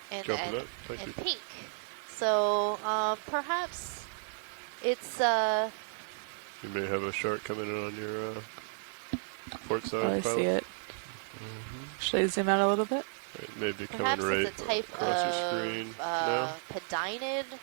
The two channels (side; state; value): left; silent; 56 dB below the other